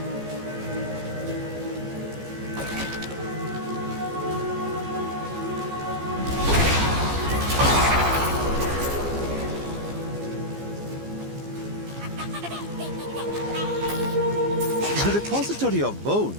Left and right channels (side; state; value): left; late; 15 ms